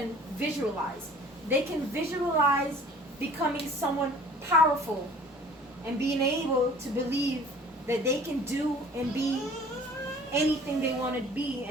visualize. They can visualize becoming someone powerful and being able to believe that they can do and be anything they want to be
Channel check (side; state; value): both; normal; correlation 0.48